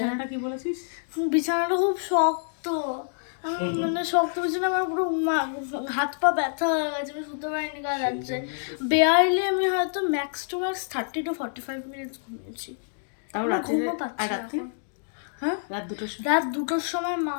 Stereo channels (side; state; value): right; silent; digital silence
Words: কি বলেছিস? বিছানাটা খুব শক্ত, আমি মানে শক্ত বিছানা, আমার পুরো হাত পা ব্যথা হয়ে গেছে, আমি শুতে পারিনি কাল রাত্রে। বেয়ারলি আমি হয়তো max to max 30 to 45 minutes ঘুমিয়েছি। ঘুমও পাচ্ছি না এখন। হ্যাঁ, রাত 2টোর সময় মা